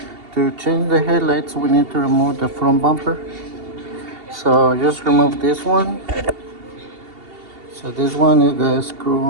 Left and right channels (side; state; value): left; late; 2.7 ms